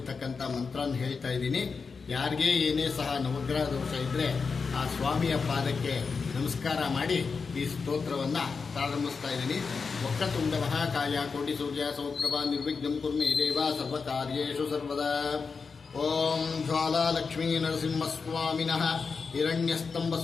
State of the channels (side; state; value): right; quieter; 5.0 dB